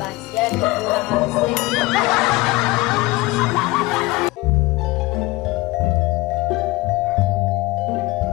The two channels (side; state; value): right; quieter; 21.4 dB